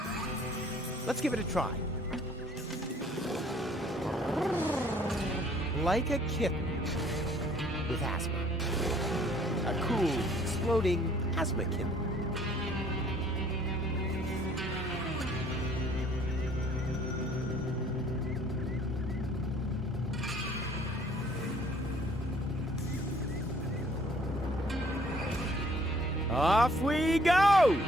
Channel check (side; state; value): both; normal; correlation 0.59